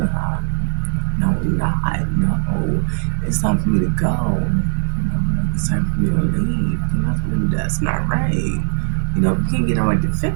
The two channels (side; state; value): left; silent; digital silence